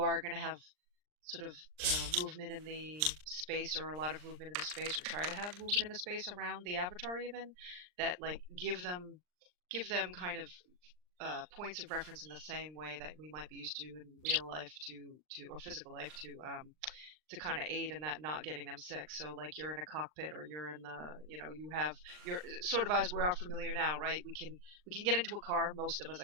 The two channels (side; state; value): left; late; 39 ms